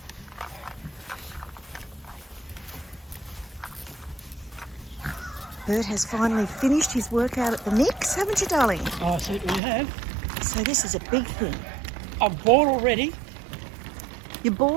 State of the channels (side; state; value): left; drops out; at 9.6 s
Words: Bert has finally finished his workout at the Nix, haven't you, darling? Oh, I certainly have. So this is a big thing. I'm bored already. You're